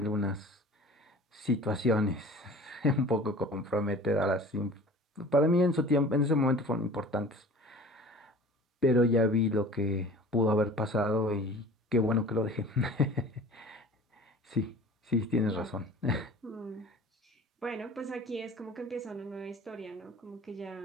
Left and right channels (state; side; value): normal; both; correlation 0.43